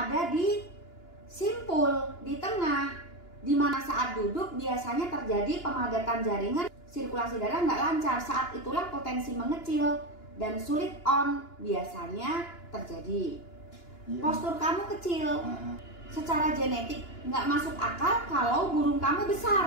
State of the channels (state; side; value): late; right; 2.9 ms